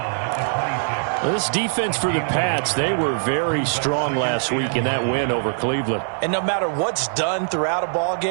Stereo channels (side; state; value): left; silent; digital silence